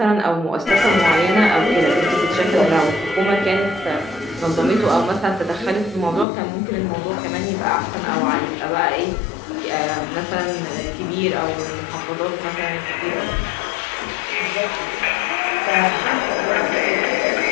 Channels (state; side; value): drops out; right; at 6.2 s